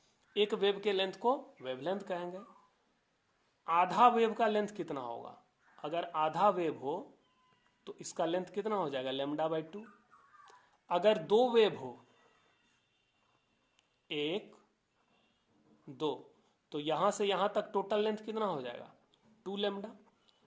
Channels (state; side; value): identical; both; correlation 1.00